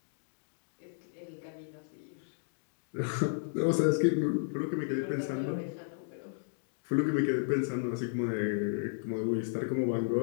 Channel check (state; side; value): silent; right; digital silence